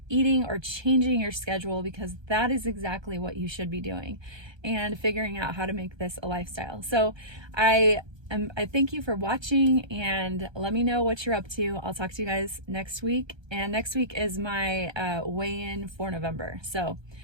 eating or changing your schedule, because that is exactly what you should be doing, and figuring out how to make this a lifestyle. So I thank you for watching, and let me know what you're up to. I'll talk to you guys next week, and next week is my weigh-in for November. So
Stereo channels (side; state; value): left; late; 1.3 ms